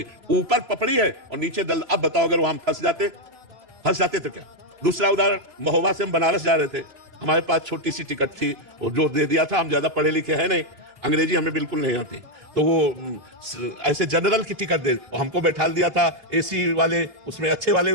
ऊपर पपड़ी है और नीचे दल। अब बताओ, अगर वहां फंस जाते तो क्या? दूसरा उदाहरण, महोबा से हम बनारस जा रहे थे, हमारे पास छोटी सी टिकट थी और जो दे दिया था, हम ज्यादा पढ़े लिखे हैं नहीं, अंग्रेजी हमें बिल्कुल नहीं आती, तो वो ऐसे जनरल की टिकट दे, हमको बैठा दिया था एसी वाले उसमें, अच्छे वाले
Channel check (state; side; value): late; left; 3.0 ms